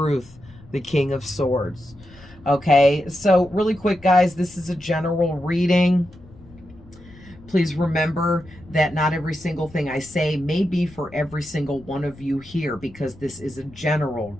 the King of Swords. Okay, so really quick, guys, this is a general reading. Please remember that not every single thing I say may be for every single one of you here, because this is a general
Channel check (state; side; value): noise; left; rumble, 22 dB below the sound